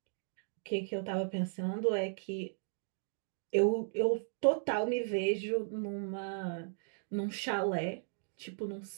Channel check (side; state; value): left; silent; digital silence